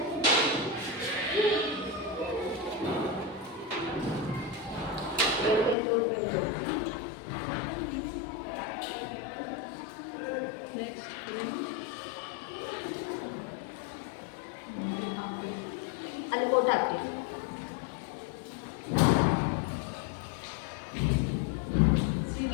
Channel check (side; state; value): right; drops out; at 5.8 s